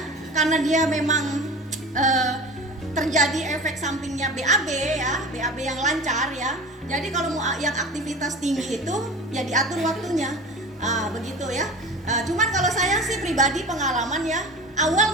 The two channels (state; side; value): normal; both; correlation 0.36